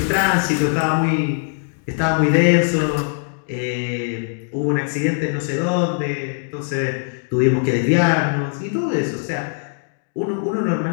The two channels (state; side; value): silent; right; digital silence